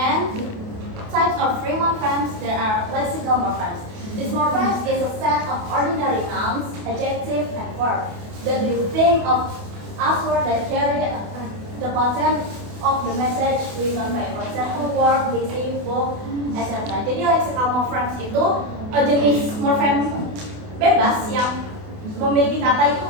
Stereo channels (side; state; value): left; late; 28 ms